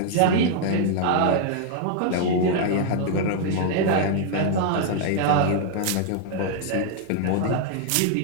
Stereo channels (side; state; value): both; different; correlation -0.01